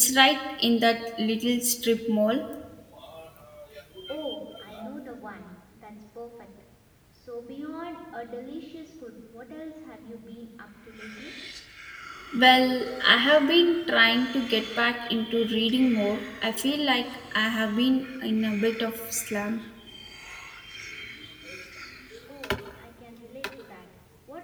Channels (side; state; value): both; identical; correlation 1.00